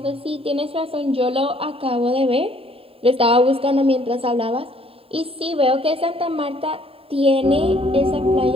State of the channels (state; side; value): late; left; 0.27 ms